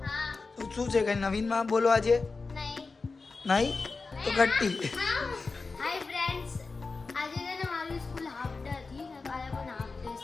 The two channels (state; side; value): quieter; right; 4.1 dB